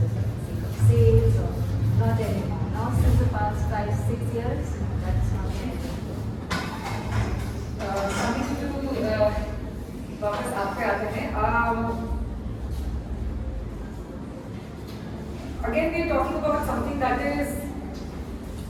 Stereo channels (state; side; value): identical; both; correlation 1.00